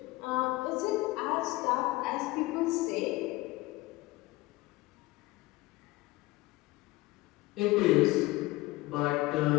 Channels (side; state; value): right; quieter; 20.3 dB